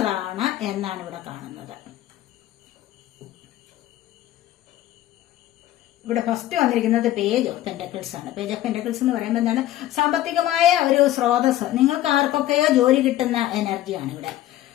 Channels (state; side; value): quieter; right; 13.9 dB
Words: എന്നാണ് ഇവിടെ കാണുന്നത്. ഇവിടെ ഫസ്റ്റ് വന്നിരിക്കുന്നത് പേജ് ഓഫ് പെന്റക്കിൾസ് ആണ്. പേജ് ഓഫ് പെന്റക്കിൾസ് എന്ന് പറയുമ്പോൾ എന്താണ്? സാമ്പത്തികമായ ഒരു സ്രോതസ്, നിങ്ങൾക്ക് ആർക്കൊക്കെയോ ജോലി കിട്ടുന്ന എനർജിയാണ്